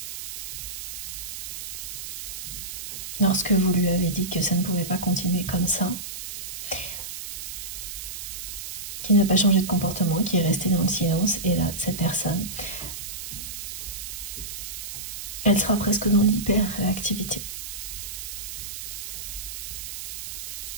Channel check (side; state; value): right; noise; hiss, 8 dB below the sound